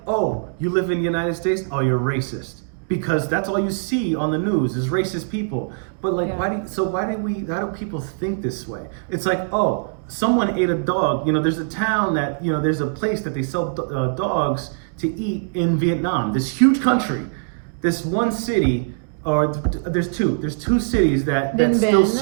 oh, you live in the United States? Oh, you're racist. Because that's all you see on the news is racist people. But like, Yeah. how do people think this way? It's like, oh, someone ate a dog. There's a town that, there's a place that they sell dogs to eat in Vietnam. This huge country, this one city, or there's two cities that still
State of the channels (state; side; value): silent; left; digital silence